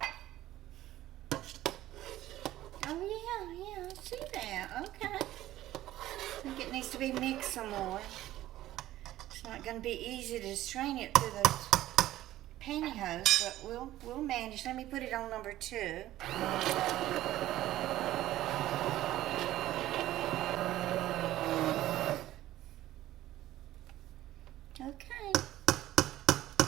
Oh yeah, I see that. Okay. I think it needs to be mixed some more. It's not going to be easy to strain it through those pantyhose, but we'll manage. Let me put it on number 2. Okay.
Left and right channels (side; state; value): left; quieter; 14.5 dB